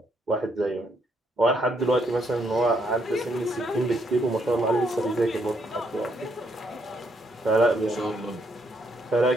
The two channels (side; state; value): both; normal; correlation 0.74